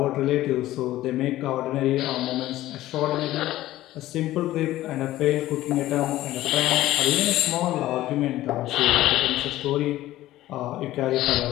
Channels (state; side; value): quieter; right; 15.3 dB